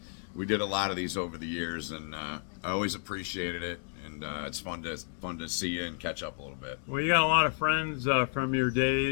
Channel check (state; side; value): silent; right; 57 dB below the other